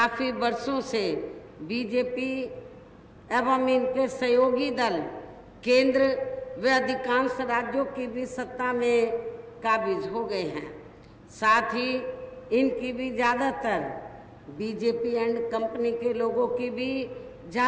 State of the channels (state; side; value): identical; both; correlation 1.00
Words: वर्षों से बीजेपी एवं इनके सहयोगी दल केंद्र व अधिकांश राज्यों की भी सत्ता में काबिज हो गए हैं। साथ ही इनकी भी ज़्यादातर बीजेपी एंड कंपनी के लोगों की भी